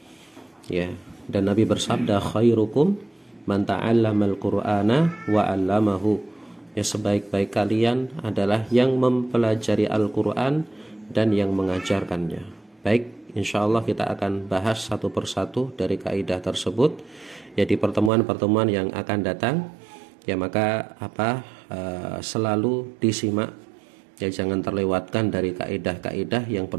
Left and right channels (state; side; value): drops out; left; at 18.1 s